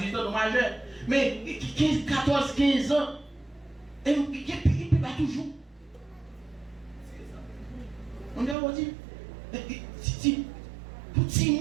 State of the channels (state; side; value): drops out; left; at 8.6 s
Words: ans de majeur, mais 14, 15 ans, et il ne peut pas toujours. On a dit, petit